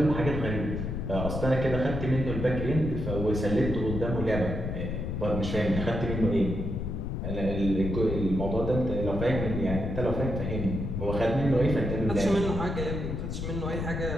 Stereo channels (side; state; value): left; noise; rumble, 3 dB below the sound